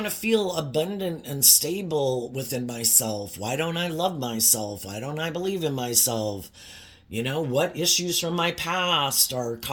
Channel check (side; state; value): both; identical; correlation 1.00